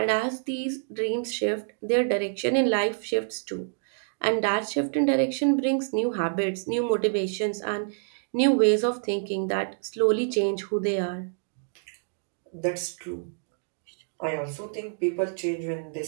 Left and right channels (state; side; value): silent; left; digital silence